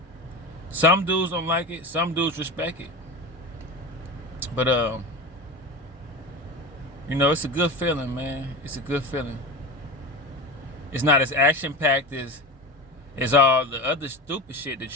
Some dudes don't like it. Some dudes respect it. But it's a good feeling, man. It's a good feeling. It's not as action-packed as all the other stupid shit that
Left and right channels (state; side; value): normal; both; correlation 0.27